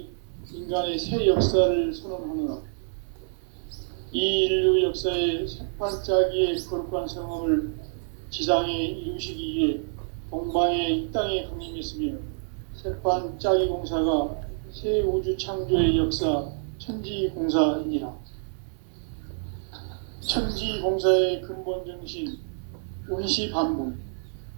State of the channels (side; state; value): left; silent; 60 dB below the other